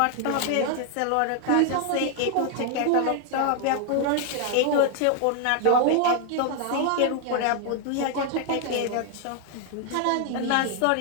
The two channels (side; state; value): both; different; correlation 0.00